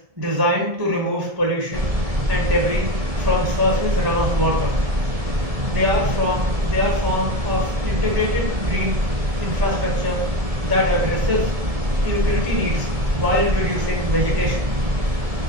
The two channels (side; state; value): left; late; 1.7 ms